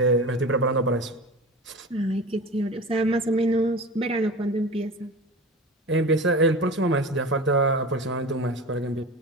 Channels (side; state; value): both; normal; correlation 0.32